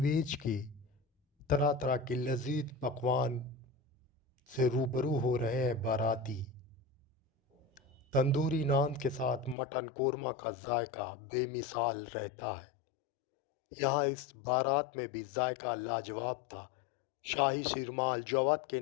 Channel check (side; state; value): right; drops out; at 9.6 s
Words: के तरह तरह के लजीज पकवान से रूबरू हो रहे हैं बाराती। तंदूरी नान के साथ मटन कोरमा का जायका बेमिसाल रहता है। यहाँ इस बारात में भी जायका लाजवाब था। शाही शिरमाल जवाद के